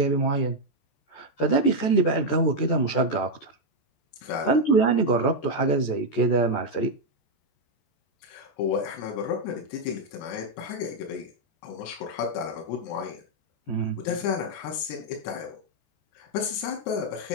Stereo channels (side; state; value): right; late; 14 ms